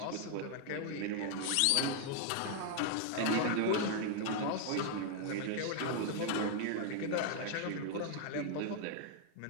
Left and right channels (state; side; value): different; both; correlation 0.00